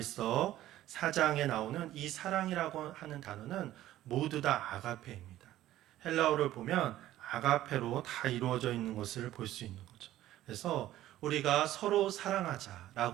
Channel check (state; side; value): quieter; left; 14.0 dB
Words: 4장에 나오는 이 사랑이라고 하는 단어는 모두 다 아가페입니다. 헬라어를 보면 아가페로 다 이루어져 있는 것을 볼 수 있는 거죠. 그래서 우리가 서로